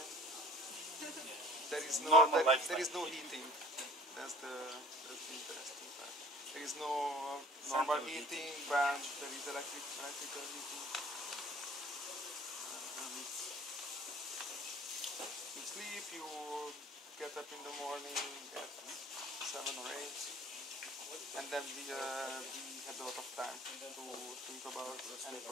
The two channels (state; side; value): normal; both; correlation 0.49